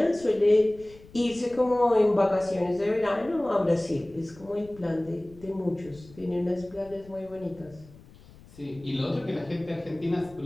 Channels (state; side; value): noise; left; rumble, 22 dB below the sound